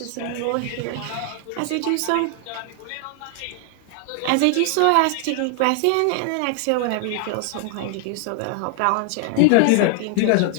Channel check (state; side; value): different; both; correlation 0.00